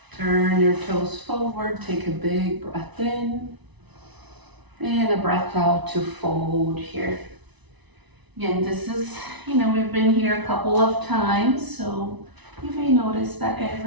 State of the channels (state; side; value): late; left; 1.0 ms